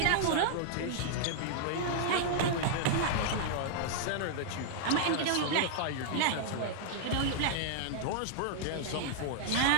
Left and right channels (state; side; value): different; both; correlation -0.01